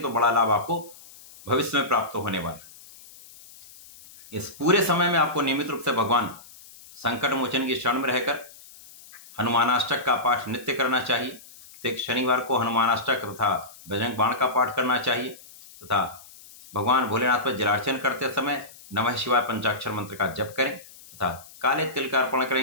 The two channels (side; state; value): left; noise; hiss, 21 dB below the sound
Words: तो बड़ा लाभ आपको भविष्य में प्राप्त होने वाला है। इस पूरे समय में आपको नियमित रूप से भगवान संकट मोचन की शरण में रहकर हनुमानाष्टक का पाठ नित्य करना चाहिए। प्रत्येक शनिवार को हनुमानाष्टक तथा बजरंग बाण का पाठ करना चाहिए, तथा भगवान भोलेनाथ पर जलार्चन करते समय नमः शिवाय पंचाक्षर मंत्र का जप करें तथा काले तिल का अर्पण